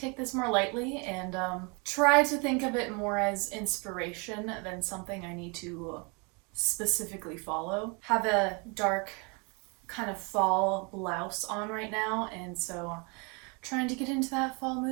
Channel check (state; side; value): quieter; left; 31.9 dB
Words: this more lightly and try to think of it more as inspiration than something I need to specifically follow. Have a dark kind of fall blouse on right now, and so trying to get into that fall